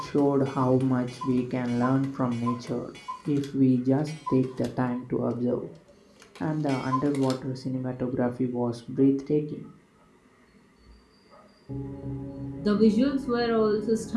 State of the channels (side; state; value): both; identical; correlation 1.00